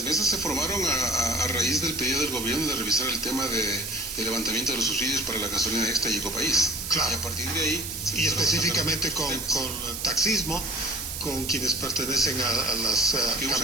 mesas se formaron a raíz del pedido del gobierno de revisar el tema de levantamiento de los subsidios para la gasolina extra y Ecopaís. Claro. Y a partir de ahí... Y específicamente con el taxismo, con quienes pertenecen a las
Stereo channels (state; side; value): noise; right; hiss, 6 dB below the sound